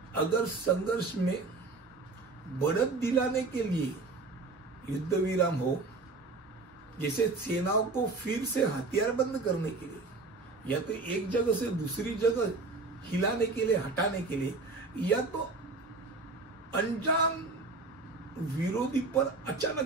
अगर संघर्ष में बढ़त दिलाने के लिए युद्ध विराम हो, जैसे सेनाओं को फिर से हथियार बंद करने के लिए, या तो एक जगह से दूसरी जगह हिलाने के लिए, हटाने के लिए, या तो अनजान विरोधी पर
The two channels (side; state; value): left; quieter; 3.7 dB